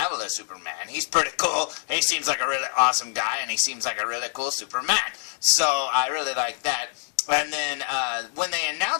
as Superman. He's pretty cool. He seems like a really awesome guy, and he seems like a really cool Superman. So I really like that. And then when they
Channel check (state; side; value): silent; right; 62 dB below the other